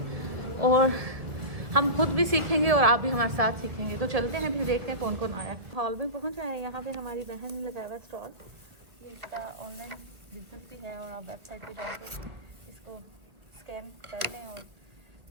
और हम खुद भी सीखेंगे और आप भी हमारे साथ सीखेंगे। तो चलते हैं फिर देखते हैं कौन कौन आया। हॉल में पहुंच आए। यहाँ पे हमारी बहन ने लगाया हुआ स्टॉल। इसका ऑनलाइन बिजनेस भी है और आप वेबसाइट पे जाके इसको स्कैन कर लें और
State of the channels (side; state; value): left; late; 2.1 ms